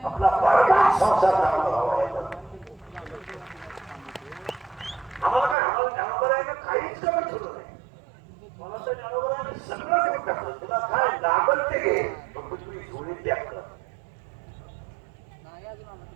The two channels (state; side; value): drops out; left; at 5.6 s